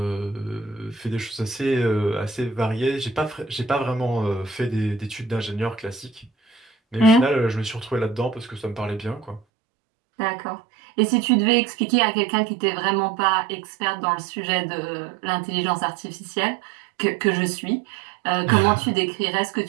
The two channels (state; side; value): drops out; left; at 9.4 s